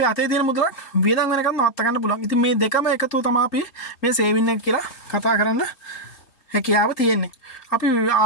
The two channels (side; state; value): right; late; 3.2 ms